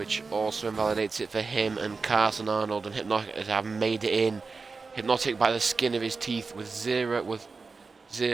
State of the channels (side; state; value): left; quieter; 4.4 dB